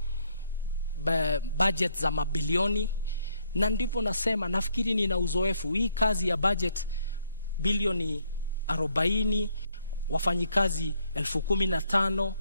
budget za mabilioni, na ndipo nasema nafikiri nina uzoefu. Hii kazi ya budget bilioni 40, wafanyikazi 15,000,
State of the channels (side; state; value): both; inverted; correlation -0.70